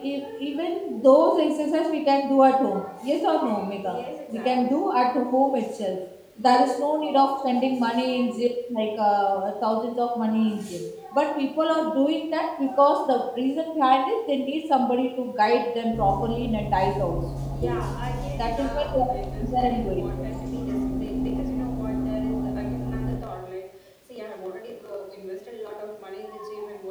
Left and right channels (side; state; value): both; identical; correlation 1.00